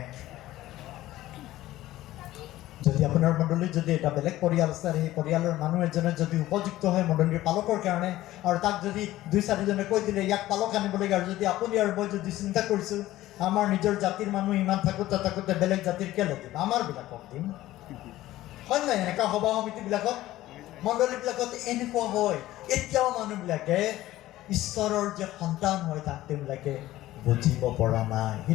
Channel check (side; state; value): right; quieter; 15.6 dB